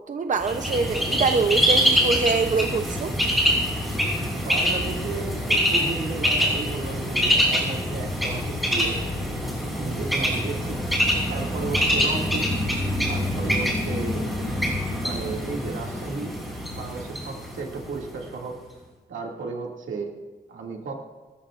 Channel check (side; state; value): both; normal; correlation 0.53